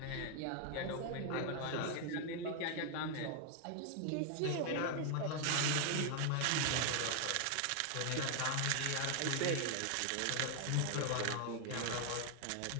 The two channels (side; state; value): both; different; correlation 0.00